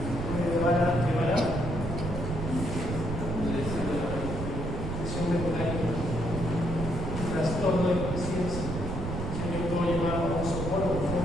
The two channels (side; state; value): right; noise; rumble, 4 dB below the sound